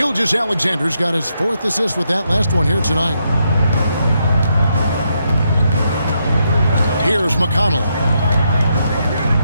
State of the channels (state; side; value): inverted; both; correlation -0.79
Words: got his 4th assist with that last one here tonight. Here's McConnell.